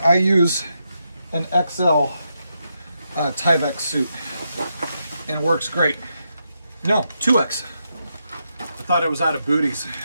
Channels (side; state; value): both; inverted; correlation -0.83